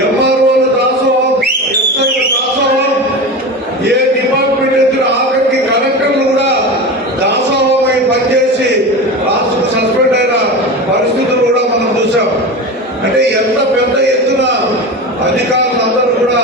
ఎంఆర్ఓల దాసోహం, ఎస్ఐల దాసోహం, ఏ డిపార్ట్మెంట్ ఎదురు ఆఖరికి కలెక్టర్లు కూడా దాసోహమై పనిచేసి రాష్ట్రం సస్పెండ్ అయిన పరిస్థితులు కూడా మనం చూసాం. అంటే ఎంత పెద్ద ఎత్తున అధికారులందరూ కూడా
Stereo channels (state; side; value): normal; both; correlation 0.26